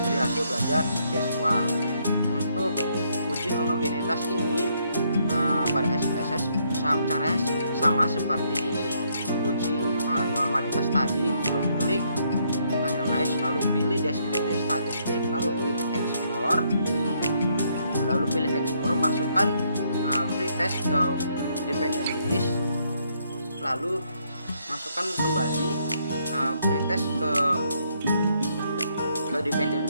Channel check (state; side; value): inverted; both; correlation -0.72